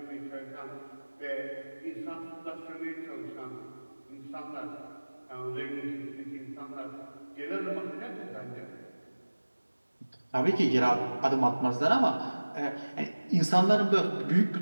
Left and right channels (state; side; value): inverted; both; correlation -1.00